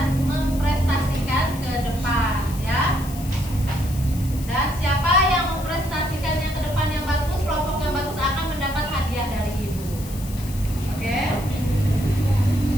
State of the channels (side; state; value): left; noise; hiss, 15 dB below the sound